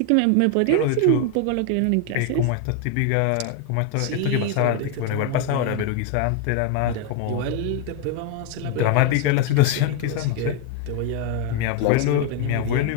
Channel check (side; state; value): both; different; correlation 0.01